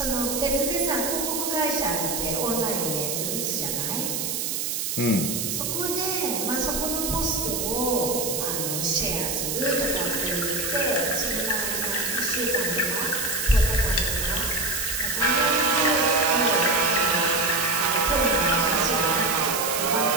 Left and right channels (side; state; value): right; noise; hiss, 1 dB below the sound